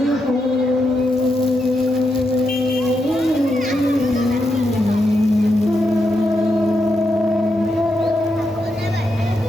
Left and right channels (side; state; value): both; normal; correlation 0.83